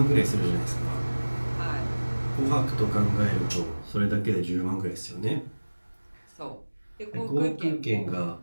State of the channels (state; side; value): inverted; both; correlation -1.00